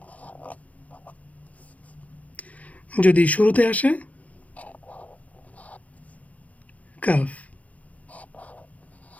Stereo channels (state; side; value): late; right; 0.070 ms